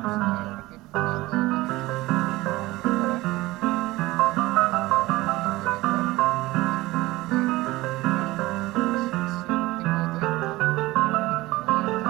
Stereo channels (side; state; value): left; quieter; 19.2 dB